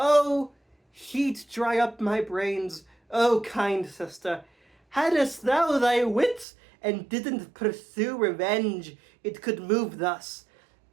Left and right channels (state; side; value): drops out; left; at 6.5 s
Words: heat dry up my brains, oh kind sister. Hadst thou thy wits, and didn't pursue revenge, it could move thus.